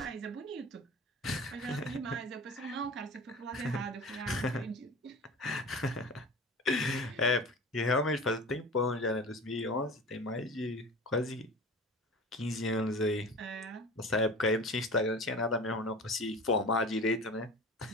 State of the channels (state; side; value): normal; both; correlation 0.36